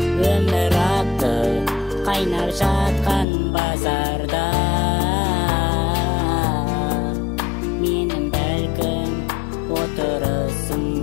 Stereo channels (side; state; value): right; drops out; at 3.2 s